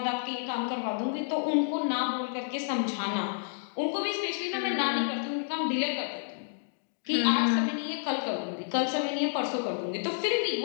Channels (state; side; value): silent; right; digital silence